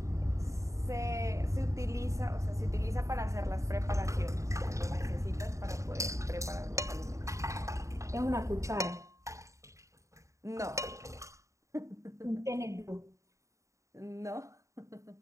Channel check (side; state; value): left; late; 0.15 ms